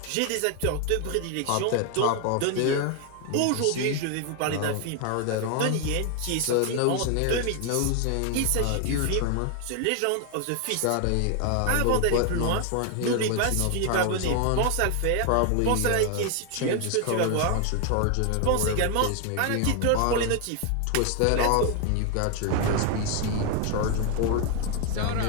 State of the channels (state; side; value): different; both; correlation 0.01